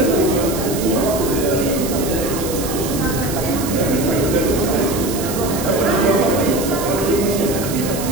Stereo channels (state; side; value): noise; right; hiss, 8 dB below the sound